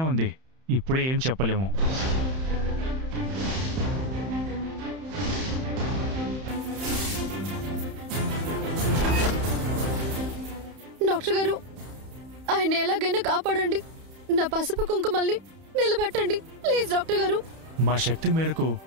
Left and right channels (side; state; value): left; late; 31 ms